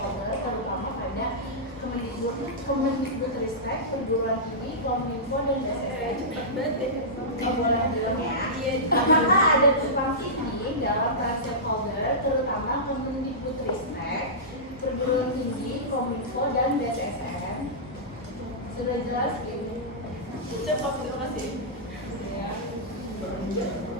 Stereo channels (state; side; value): normal; both; correlation -0.15